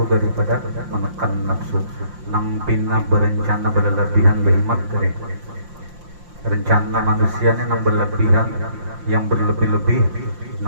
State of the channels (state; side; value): late; left; 5.7 ms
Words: daripada menekan nafsu. Nang pina berencana berlebihan behimat tadi. Rencana manusia ini nang berlebihan, yang berlebih-lebih,